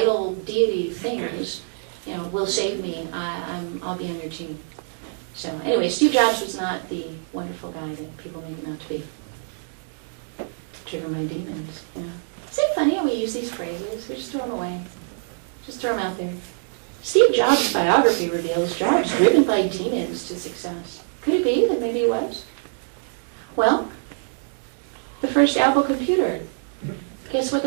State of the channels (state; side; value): silent; left; 62 dB below the other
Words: deity things, will save me, I'll be on your team. So anyway, Steve Jobs was not the wonderful guy that people make him out to be. Driven by demons. Yeah. Isn't it funny how we use these phrases? We just throw them away. Just throw them out there. Steve Jobs' biography reveals Jobs driven by demons to success. Could it be that maybe he was? Well, the first Apple computer. Guess what